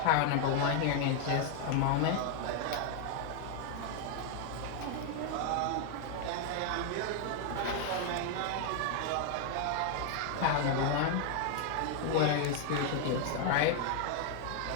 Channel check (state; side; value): different; both; correlation 0.00